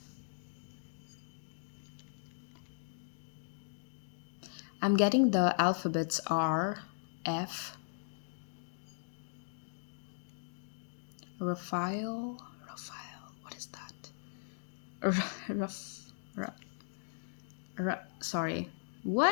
I'm getting the alphabets R, F, Raphael, what is that? Raf, Ra- sorry.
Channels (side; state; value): right; silent; digital silence